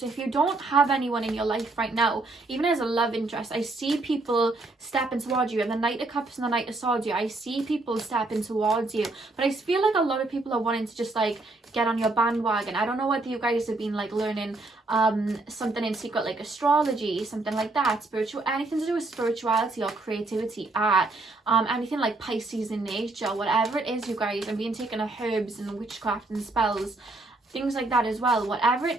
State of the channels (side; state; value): left; quieter; 3.1 dB